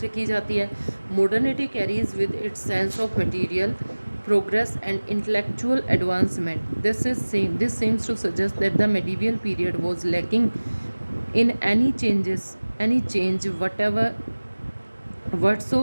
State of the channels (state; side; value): inverted; both; correlation -1.00